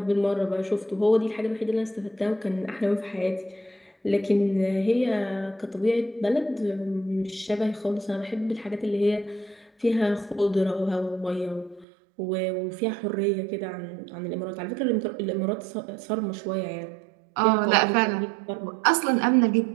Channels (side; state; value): left; drops out; at 11.9 s